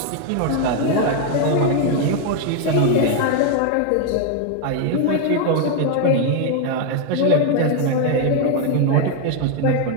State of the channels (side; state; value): both; different; correlation 0.01